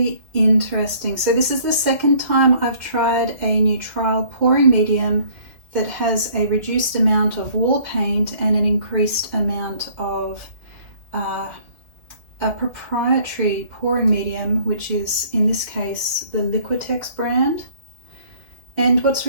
interesting. So this is the second time I've tried a new trial pouring medium that has a reduced amount of wall paint and an increased amount of a proprietary pouring medium, which is in this case the Liquitex brand. And what's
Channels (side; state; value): left; late; 1.9 ms